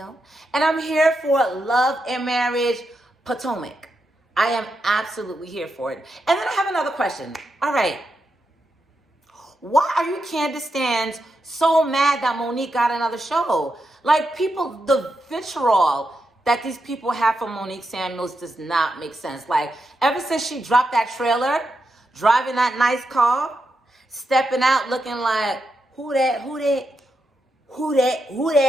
and I'm here for Love and Marriage Potomac. I am absolutely here for it. And then I have another question. All right. Why are you Candace stans so mad that Monique got another show? Like, people, the vitriol that these people have for Monique Samuels does not make sense. Like, ever since she dropped that trailer, driving that nice car, stepping out looking like, who that?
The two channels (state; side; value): normal; both; correlation 0.85